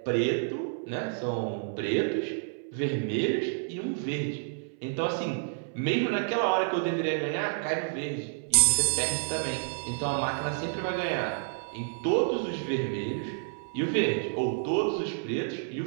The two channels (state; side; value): silent; left; 58 dB below the other